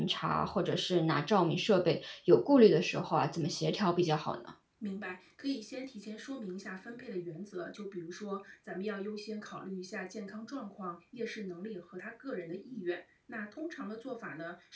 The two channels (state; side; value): identical; both; correlation 1.00